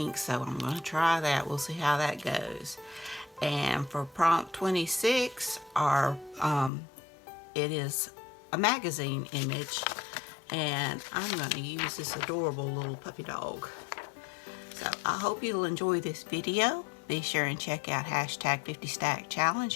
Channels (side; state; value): right; drops out; at 6.7 s